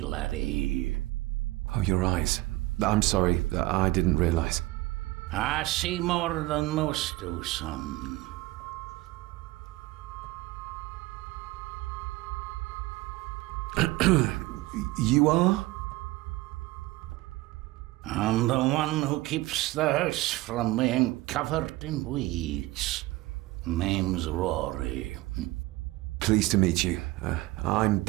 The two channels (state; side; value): quieter; left; 19.3 dB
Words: laddie. Oh, your eyes. I'm sorry, I didn't realize. I see more than most do, son. You are? I'm the one who keeps the house from being covered in weeds. Name's Rory. Pleased to meet you. I'm